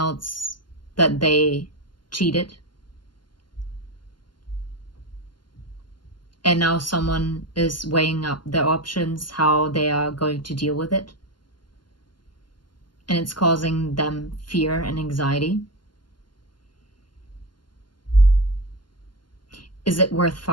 that they cheated. And now someone is weighing up their options, how they are going to deal with it. And it's causing them fear and anxiety. Is it worth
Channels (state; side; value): late; right; 0.71 ms